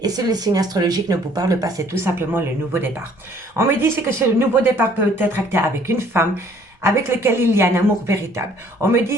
Et si le signe astrologique ne vous parle pas, c'est tout simplement le nouveau départ. On me dit que ce nouveau départ peut être acté avec une femme avec laquelle il y a un amour véritable. On me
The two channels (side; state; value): both; normal; correlation 0.58